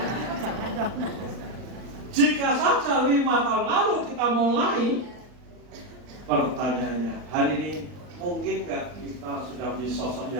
Jika saja 5 tahun lalu kita mulai, pertanyaannya hari ini mungkin nggak kita sudah menjadi sosok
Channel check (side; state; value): left; late; 39 ms